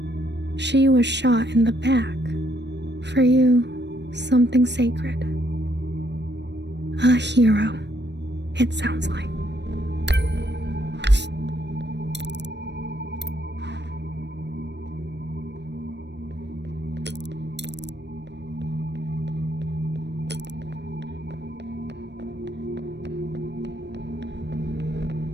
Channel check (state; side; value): late; left; 0.50 ms